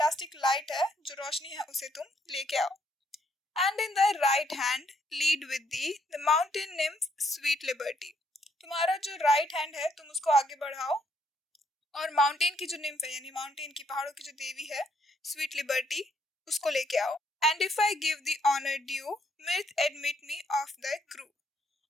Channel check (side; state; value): both; normal; correlation 0.71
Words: लाइट है, जो रोशनी है, उसे तुम लेके आओ. And in thy right hand lead with thee the mountain nymph sweet liberty. तुम्हारा जो राइट हैंड है तुम उसको आगे बढ़ाओ और माउंटेन की जो निम्फ है, यानी माउंटेन की, पहाड़ों की जो देवी है, स्वीट लिबर्टी, उसको लेके आओ. And if I give the honor due, mirth admit me of thy crew.